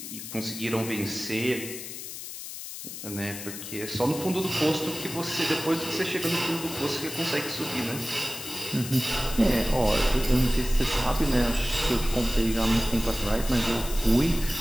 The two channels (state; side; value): noise; left; hiss, 10 dB below the sound